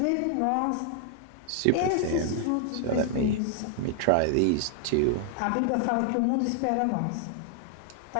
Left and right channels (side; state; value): both; different; correlation 0.00